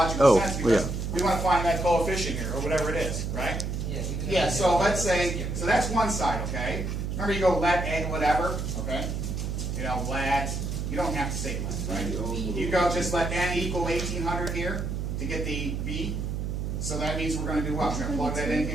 sense because yeah. we want to find that coefficient here, or whatever it is, right? Yeah. Yeah, so let's say, so that's one side, okay? Remember you go let n whatever, okay? You know, let You don't have to say length, right? You go just let n equal 1800 here to get the b. So that means we're going to do what? We're going to plug that in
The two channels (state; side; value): noise; right; hum, 2 dB below the sound